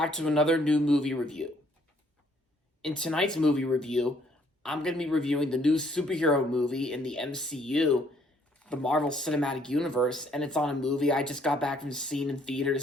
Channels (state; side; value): normal; both; correlation 0.65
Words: to another new movie review. In tonight's movie review, I'm going to be reviewing the new superhero movie in the MCU, the Marvel Cinematic Universe, and it's on a movie I just got back from seeing in